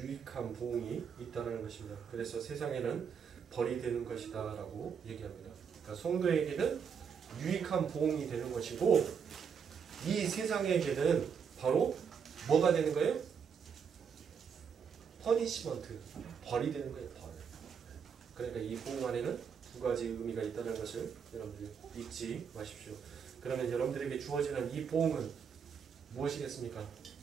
보응이 있다는 것입니다. 그래서 세상에는 벌이 되는 것이다 라고 얘기합니다. 그러니까 성도에게는 유익한 보응이 되는 것이고 이 세상에게는 바로 뭐가 되는 거예요? 퍼니시먼트, 벌이 되는 거예요. 벌. 그러니까 이 보응 안에는 두 가지 의미가 있다는 것을 여러분들 잊지 마십시오. 그러면 여러분들에게 주어지는 이 보응은 무엇이겠습니까?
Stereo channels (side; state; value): left; quieter; 6.8 dB